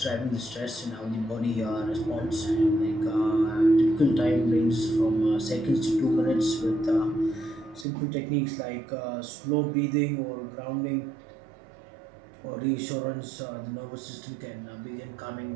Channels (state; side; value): drops out; left; at 7.9 s